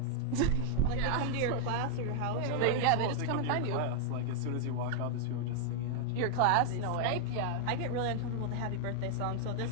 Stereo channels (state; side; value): late; right; 19 ms